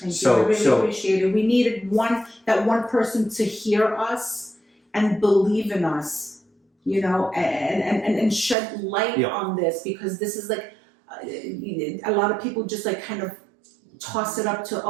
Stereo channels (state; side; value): drops out; left; at 8.6 s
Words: So- you. I really so- appreciate it. We needed that one person to hear us and believe in us, you know, and shed light Yeah. on this because this is like a lot of people just like kind of toss it up to